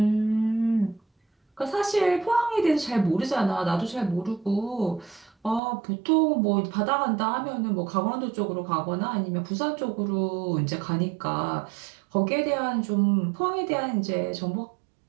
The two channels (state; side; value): drops out; left; at 5.6 s